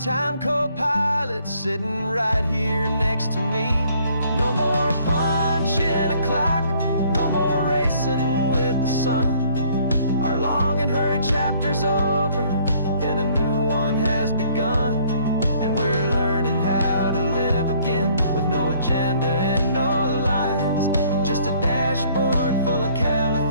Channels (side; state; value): both; inverted; correlation -0.61